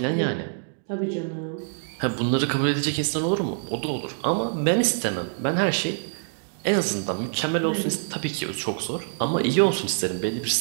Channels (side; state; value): left; silent; digital silence